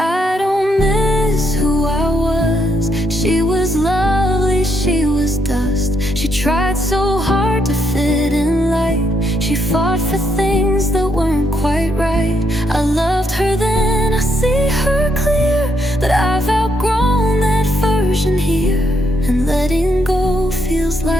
don't miss who I was. She was lovely, she was dust. She tried so hard to fit in light. She fought for things that weren't quite right. I loved her then, I see her clear, but I've outgrown that version here, and letting go feels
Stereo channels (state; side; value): normal; both; correlation 0.76